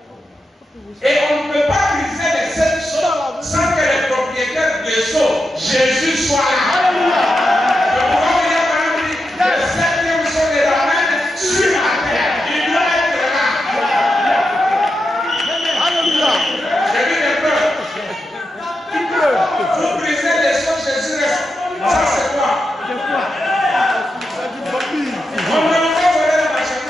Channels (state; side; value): normal; both; correlation 0.87